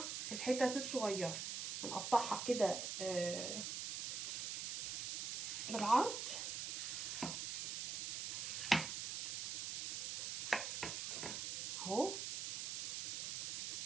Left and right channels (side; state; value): right; noise; hiss, 2 dB below the sound